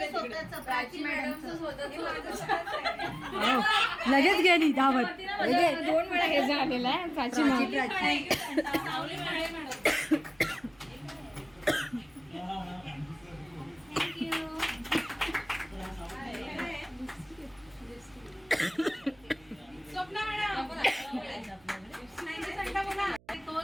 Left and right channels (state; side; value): noise; right; hum, 29 dB below the sound